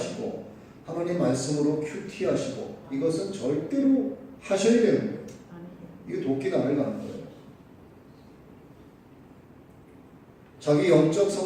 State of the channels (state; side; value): identical; both; correlation 1.00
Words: 하나님 말씀으로 큐티하시고 이것은 절대로 하셔야 되는 거예요. 이게 도끼 나를 가는 거예요. 자기 영적